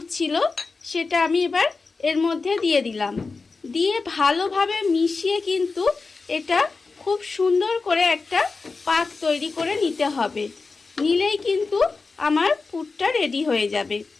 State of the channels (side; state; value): right; quieter; 4.1 dB